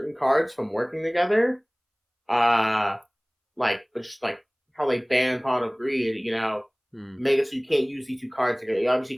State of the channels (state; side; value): identical; both; correlation 1.00